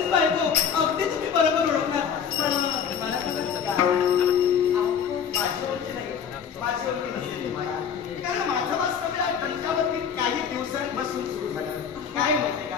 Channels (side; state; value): right; quieter; 7.4 dB